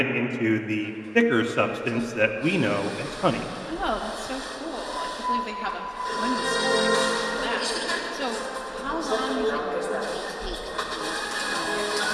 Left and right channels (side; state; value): both; identical; correlation 1.00